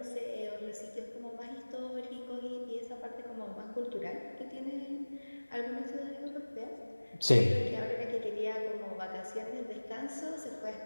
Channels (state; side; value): inverted; both; correlation -1.00